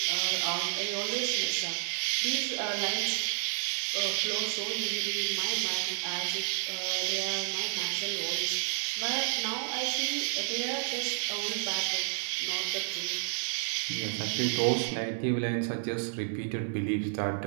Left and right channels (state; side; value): silent; left; digital silence